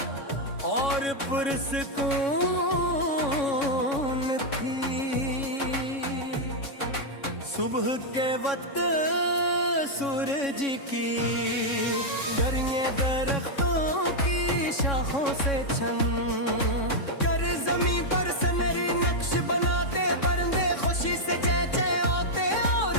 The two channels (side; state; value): right; late; 3.6 ms